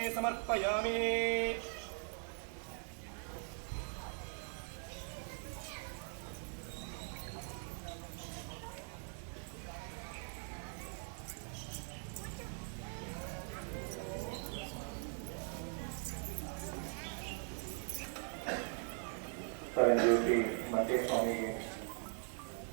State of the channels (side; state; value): left; silent; 50 dB below the other